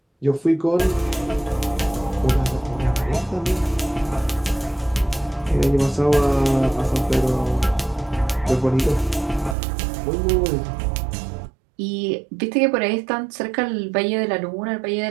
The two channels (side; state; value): left; drops out; at 9.6 s